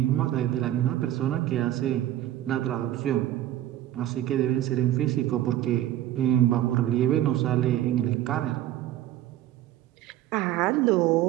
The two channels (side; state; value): left; quieter; 13.2 dB